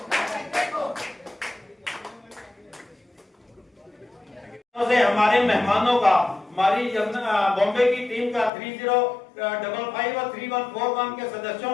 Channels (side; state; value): right; drops out; at 8.5 s